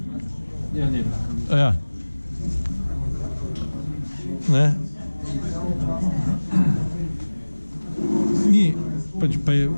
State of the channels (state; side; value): inverted; both; correlation -1.00